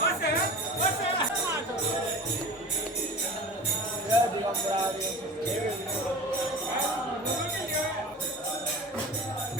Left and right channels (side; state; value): both; normal; correlation 0.36